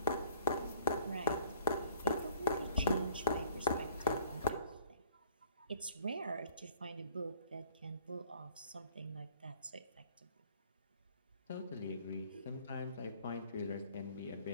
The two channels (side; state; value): both; inverted; correlation -0.56